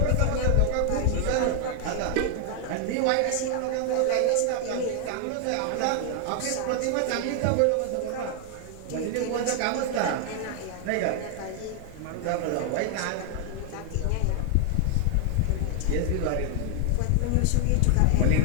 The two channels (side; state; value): both; different; correlation 0.00